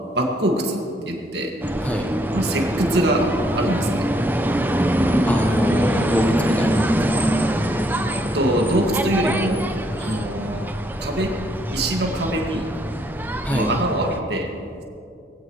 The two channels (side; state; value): both; normal; correlation 0.69